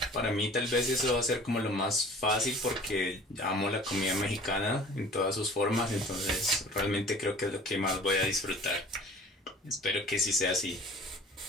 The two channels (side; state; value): both; normal; correlation 0.46